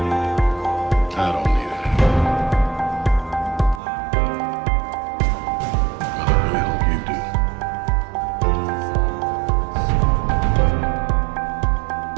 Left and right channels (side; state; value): left; drops out; at 3.8 s